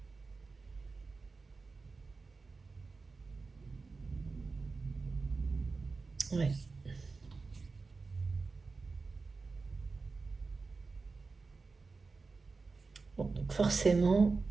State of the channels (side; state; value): left; quieter; 4.1 dB